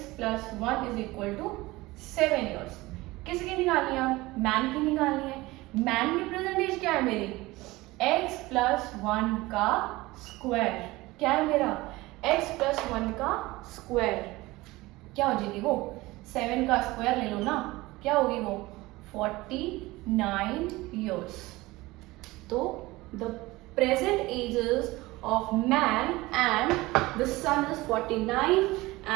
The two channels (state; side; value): quieter; left; 20.2 dB